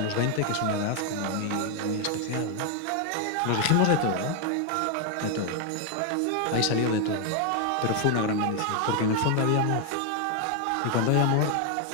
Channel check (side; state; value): both; different; correlation 0.01